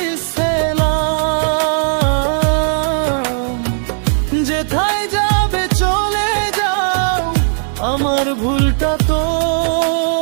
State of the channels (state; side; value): silent; left; digital silence